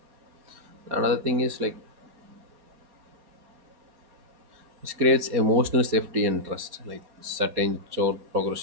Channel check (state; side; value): late; left; 4.3 ms